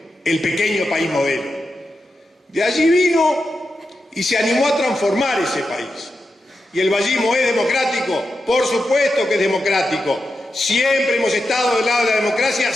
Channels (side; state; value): both; normal; correlation 0.88